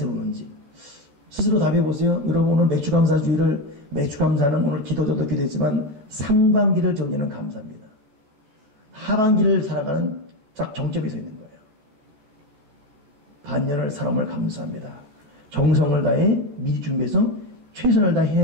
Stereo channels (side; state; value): left; late; 14 ms